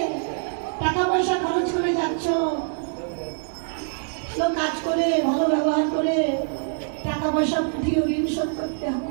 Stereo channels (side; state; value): left; silent; 61 dB below the other